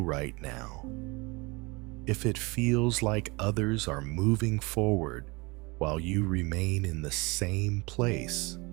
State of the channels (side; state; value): left; quieter; 26.1 dB